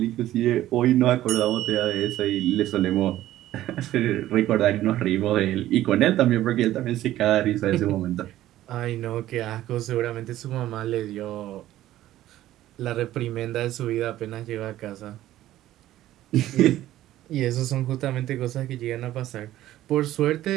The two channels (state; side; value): quieter; left; 14.1 dB